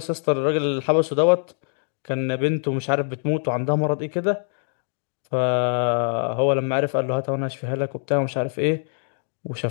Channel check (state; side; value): silent; right; 63 dB below the other